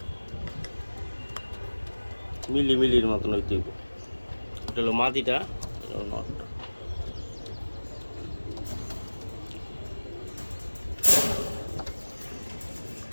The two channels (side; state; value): both; inverted; correlation -1.00